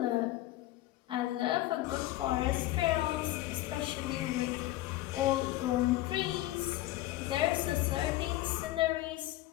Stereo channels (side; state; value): right; quieter; 15.9 dB